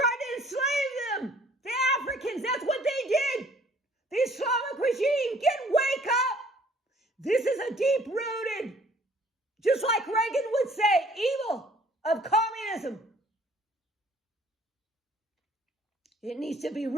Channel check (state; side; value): normal; both; correlation 0.57